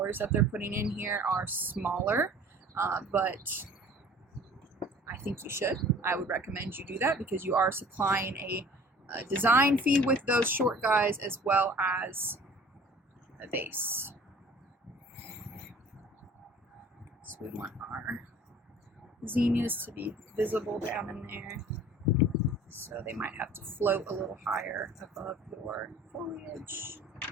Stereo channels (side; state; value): both; normal; correlation 0.48